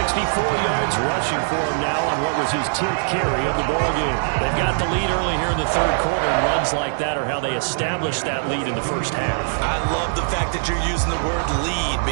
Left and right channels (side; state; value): left; silent; 65 dB below the other